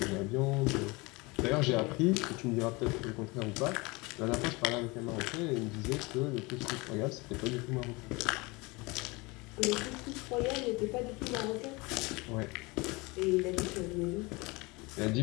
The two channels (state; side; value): quieter; right; 25.1 dB